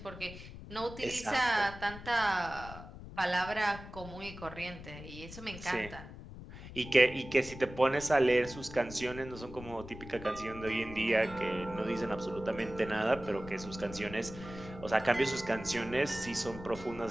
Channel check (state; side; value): noise; left; rumble, 13 dB below the sound